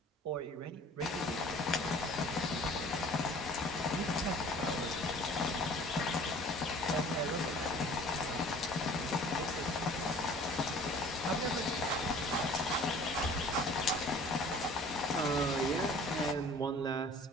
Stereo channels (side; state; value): both; normal; correlation 0.49